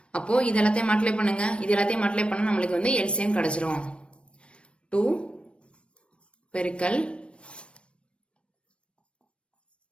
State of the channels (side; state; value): right; late; 0.059 ms